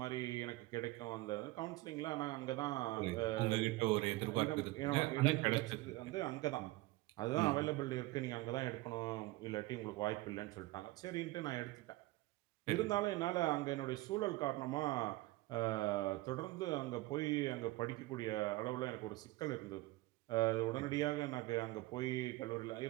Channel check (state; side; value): quieter; left; 19.8 dB